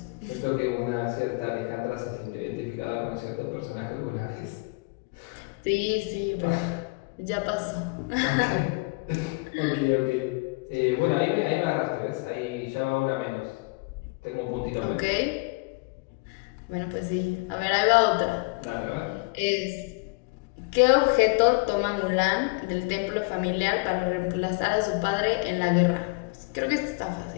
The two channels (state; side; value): quieter; right; 28.5 dB